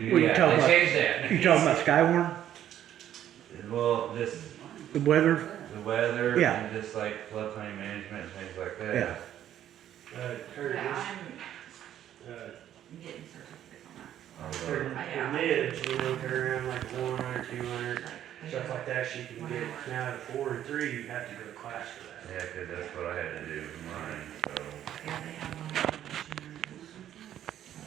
Yeah, talking they about? changed that. you talking about Skywarn, Well, just the weather? the weather Yeah. and just like floodplain management and things like that. Yeah. Curtis, I'm getting certificates on that. Oh, mids, turn around like 100, 200, stuff like that, she can get. Now at 4 and 3, you have to go to class for that. Yeah, 'cause that's what I had to do with mine, Yeah, they have one.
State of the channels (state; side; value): quieter; left; 11.1 dB